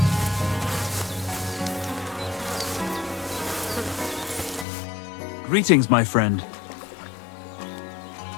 Greetings, my friend.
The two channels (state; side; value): drops out; right; at 4.7 s